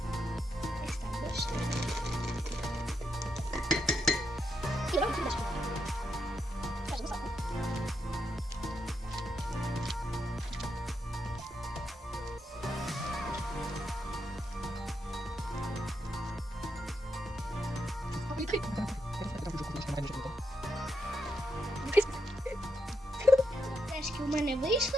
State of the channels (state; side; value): normal; both; correlation 0.82